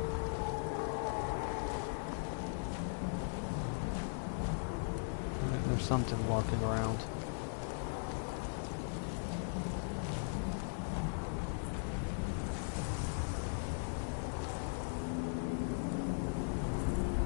Alright, there's something walking around.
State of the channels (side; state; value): right; silent; digital silence